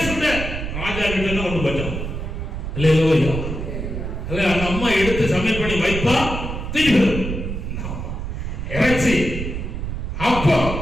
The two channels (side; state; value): right; noise; rumble, 5 dB below the sound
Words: சுட ராஜா கிட்ட தான் ஒண்ணு பச்சோம் இல்லையா? அல்ல அந்த அம்மா எடுத்து சமையல் பண்ணி வைப்பா, திருப்பி இறைச்சி அப்போ